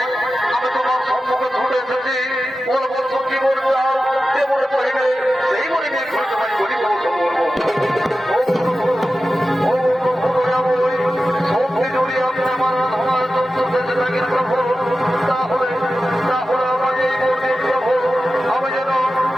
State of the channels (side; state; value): both; normal; correlation 0.93